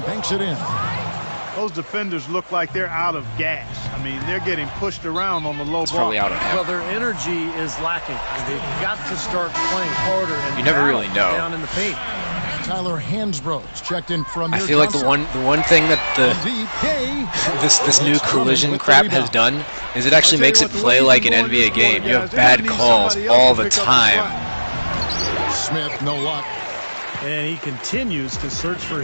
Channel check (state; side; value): inverted; both; correlation -1.00